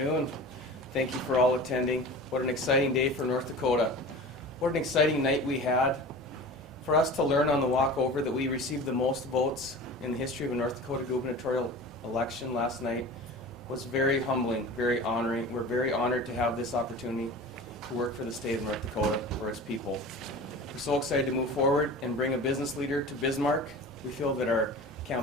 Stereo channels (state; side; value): normal; both; correlation 0.36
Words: Thank you for all attending. What an exciting day for North Dakota. What an exciting night we had. For us to learn on the walk over that we received the most votes in the history of a North Dakota gubernatorial election last night was very humbling, very honoring. We're very honored to have this opportunity to work for the state of North Dakota, for its people. We're so excited to move forward and bring a business leader to Bismarck. We feel that our